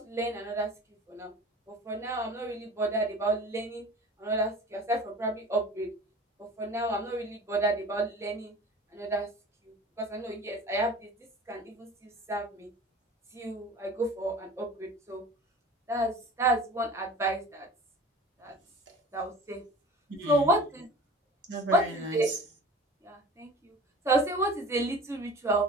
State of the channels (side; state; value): both; normal; correlation 0.41